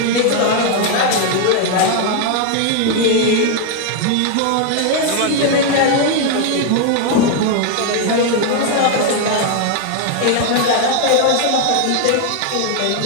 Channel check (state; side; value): different; both; correlation 0.01